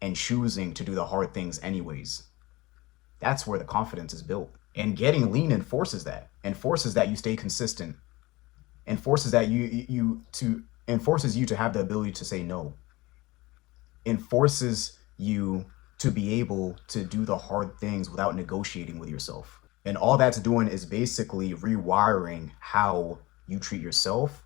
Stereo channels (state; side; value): quieter; right; 21.1 dB